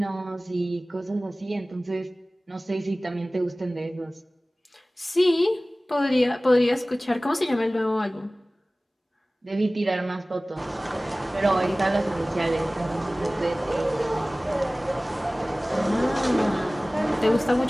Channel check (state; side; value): normal; both; correlation 0.98